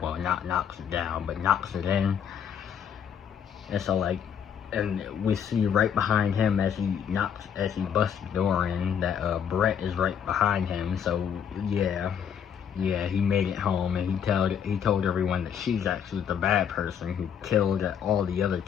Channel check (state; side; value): quieter; right; 8.2 dB